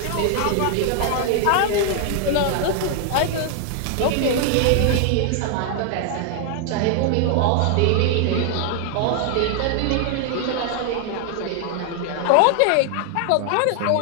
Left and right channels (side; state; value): both; different; correlation 0.00